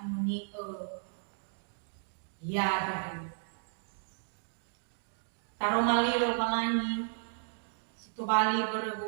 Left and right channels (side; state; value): left; silent; digital silence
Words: ya dari taromali rohani situ bali